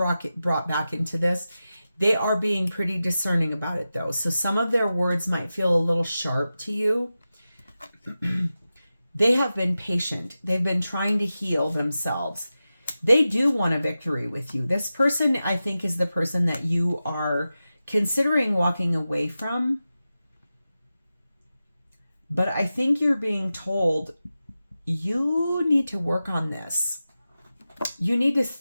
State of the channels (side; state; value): both; inverted; correlation -0.93